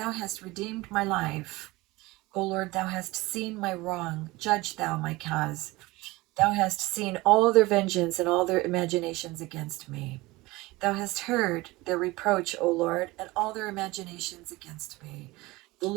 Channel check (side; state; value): left; quieter; 21.0 dB